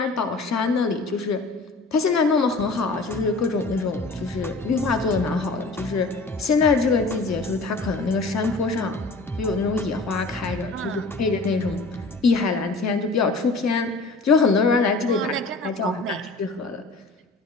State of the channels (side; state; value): right; quieter; 3.4 dB